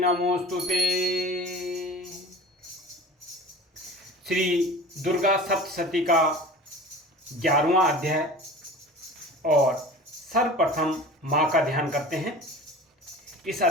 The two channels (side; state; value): both; normal; correlation 0.39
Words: श्री दुर्गा सप्तशती का 11वां अध्याय और सर्वप्रथम माँ का ध्यान करते हैं। इस